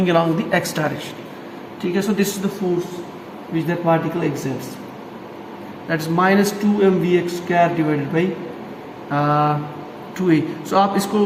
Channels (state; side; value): identical; both; correlation 1.00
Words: along the x direction. ठीक है? So this is the force which that particle exerts. That is minus 2m vx square divided by 2a. So आप इसको